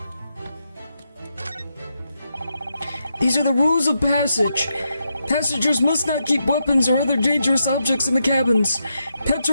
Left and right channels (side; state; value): both; inverted; correlation -0.83